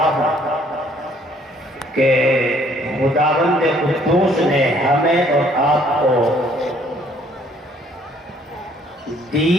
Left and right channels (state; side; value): normal; both; correlation 0.62